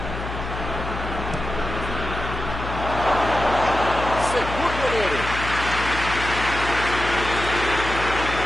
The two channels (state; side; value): noise; left; hum, 7 dB below the sound